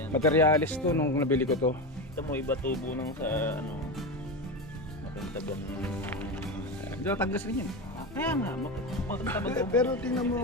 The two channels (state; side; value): normal; both; correlation 0.19